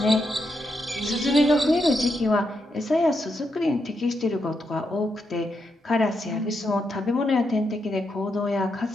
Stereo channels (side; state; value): both; normal; correlation 0.82